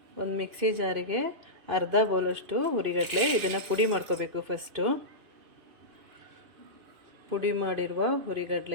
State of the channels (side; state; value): left; late; 2.9 ms